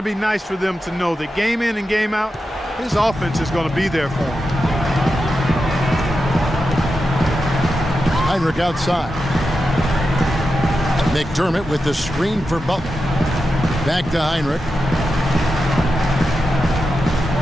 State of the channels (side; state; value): both; normal; correlation 0.89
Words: be nice for them to know that game in and game out, his offense is going to be there for him. Heinrich outside. McDermott with the screen for Butler. Back to Heinrich.